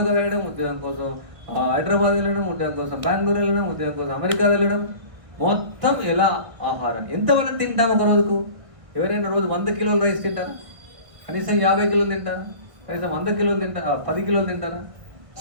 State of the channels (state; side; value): late; left; 1.4 ms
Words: వెళ్ళడం, ఉద్యోగం కోసం హైదరాబాద్ వెళ్ళడం, ఉద్యోగం కోసం బెంగళూరు వెళ్ళడం, ఉద్యోగం కోసం అమెరికా వెళ్ళడం. మొత్తం ఎలా ఆహారం ఎంతవరకు తింటాం ఒక రోజుకు? ఎవరైనా రోజు 100 కిలోల రైస్ తింటారా? కనీసం 50 కిలోలు తింటారా? కనీసం 100 కిలోలు తింటారా? 10 కిలోలు తింటారా?